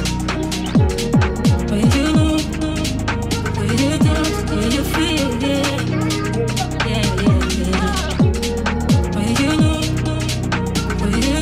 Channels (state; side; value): identical; both; correlation 1.00